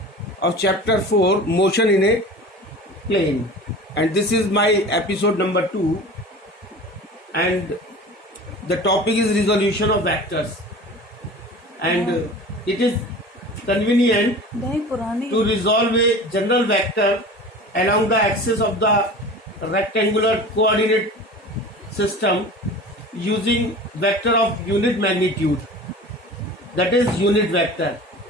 of chapter 4, motion in a plane, and this is my episode number 2, and the topic is resolution of vectors, and it is convenient to resolve a general vector along the axis of the rectangular coordinate system using vector of unit magnitude, that is unit vector,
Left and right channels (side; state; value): both; normal; correlation 0.37